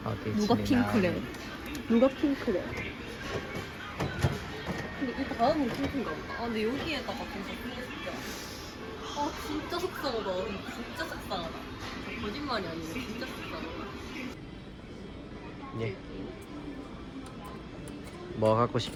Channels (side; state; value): both; identical; correlation 1.00